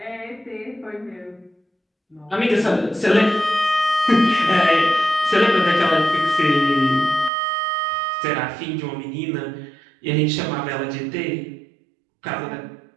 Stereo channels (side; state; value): left; drops out; at 7.3 s